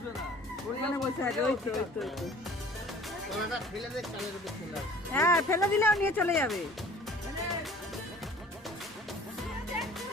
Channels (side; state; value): both; normal; correlation 0.48